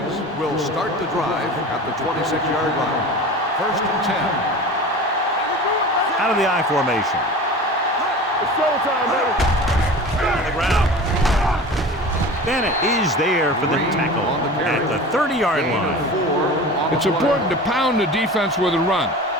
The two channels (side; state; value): both; normal; correlation 0.35